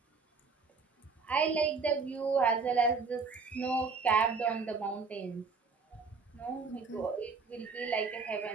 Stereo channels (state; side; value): quieter; left; 4.8 dB